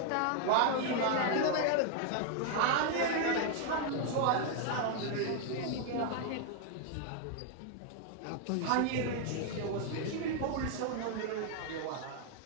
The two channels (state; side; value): different; both; correlation 0.00